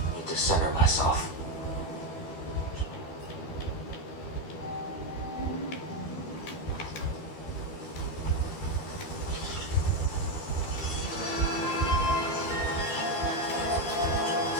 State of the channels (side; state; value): right; late; 13 ms